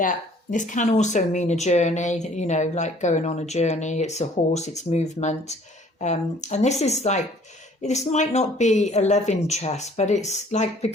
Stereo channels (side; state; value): both; normal; correlation 0.56